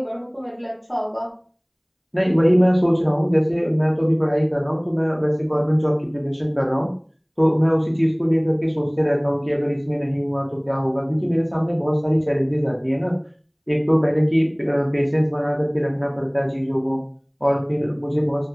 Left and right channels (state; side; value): identical; both; correlation 1.00